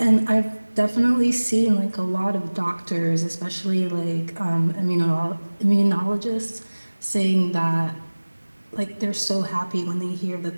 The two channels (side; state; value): both; inverted; correlation -1.00